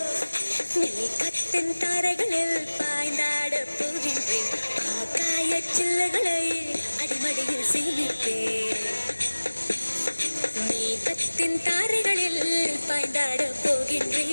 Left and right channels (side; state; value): both; inverted; correlation -1.00